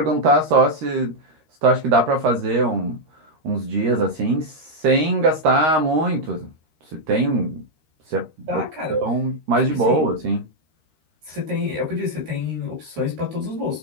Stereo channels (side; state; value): left; late; 13 ms